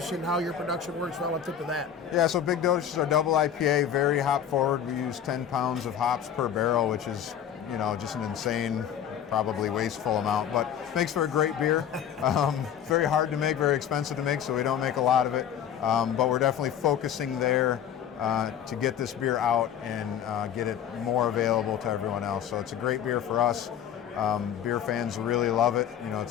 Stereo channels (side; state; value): right; quieter; 9.1 dB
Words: and how your production works relative to that? Yeah, so Big Dotage is our double IPA, very hop forward. We use 10 pounds of hops per barrel, which is, just an insane, probably wasteful amount, but makes for a great beer. Very hard to make, very expensive to make, so we don't make a lot of it. But we're definitely focusing there to get this beer out and get it more available to everyone else. So it's a great beer for us. Beer fans really love it.